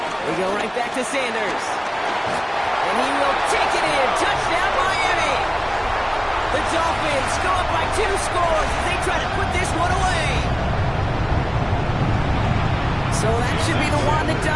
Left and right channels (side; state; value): both; identical; correlation 1.00